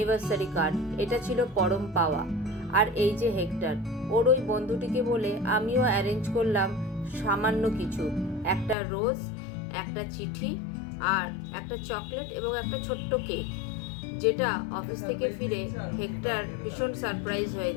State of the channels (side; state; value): right; drops out; at 8.8 s